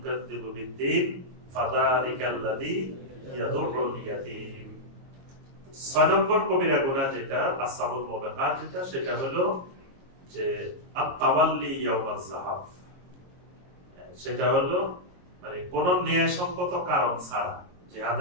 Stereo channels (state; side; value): late; left; 22 ms